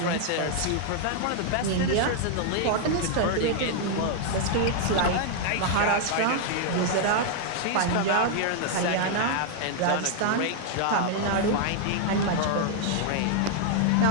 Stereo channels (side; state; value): both; different; correlation 0.00